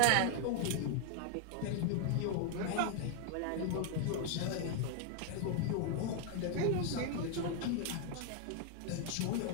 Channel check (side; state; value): both; different; correlation 0.00